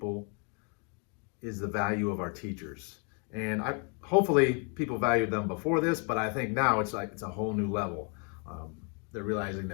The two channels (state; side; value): quieter; right; 36.4 dB